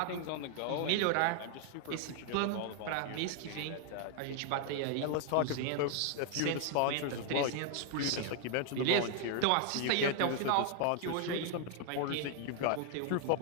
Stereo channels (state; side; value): different; both; correlation 0.00